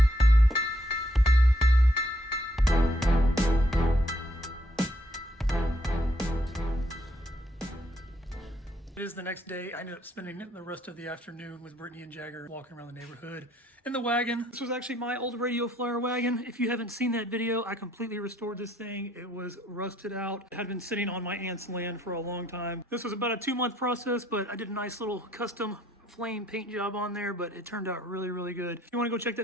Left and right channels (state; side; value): normal; both; correlation 0.70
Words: It is the next day. I ended up spending the rest of the afternoon with Brittany and Jagger walking around the neighborhood in the wagon. This was actually my old Radio Flyer wagon. If you haven't seen that video, I completely restored this thing. It was rusted out. It had been sitting on my aunt's land for a long time. This was about a 2-month process, but I did a nice little custom flame paint job on there, but it turned out really, really good. If you want to go check